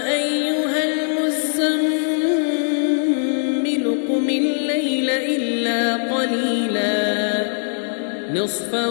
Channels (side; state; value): right; silent; digital silence